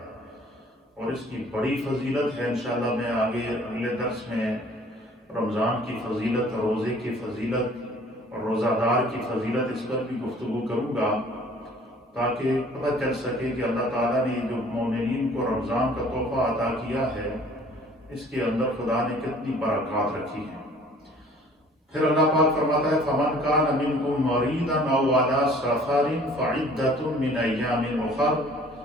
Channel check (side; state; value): both; normal; correlation 0.53